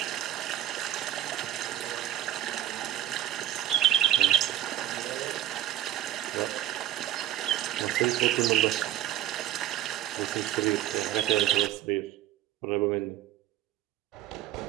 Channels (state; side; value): quieter; left; 12.3 dB